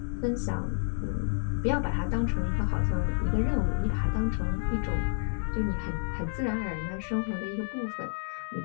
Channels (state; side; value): silent; right; digital silence